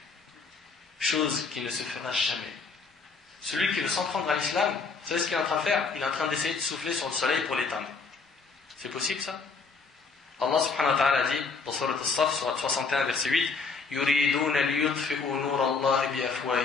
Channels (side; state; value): right; quieter; 4.7 dB